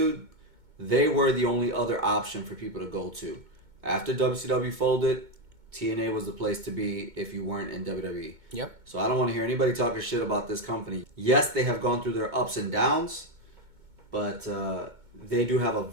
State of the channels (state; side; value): late; left; 2.2 ms